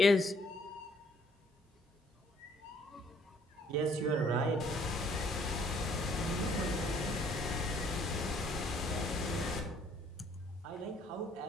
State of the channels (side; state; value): both; normal; correlation 0.64